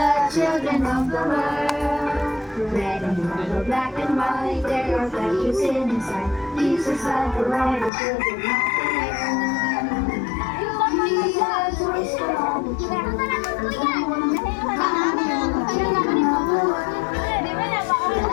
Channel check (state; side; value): drops out; right; at 7.9 s